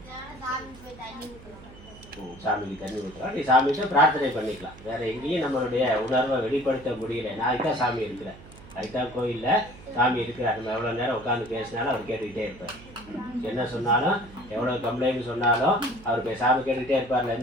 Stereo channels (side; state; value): right; noise; hum, 19 dB below the sound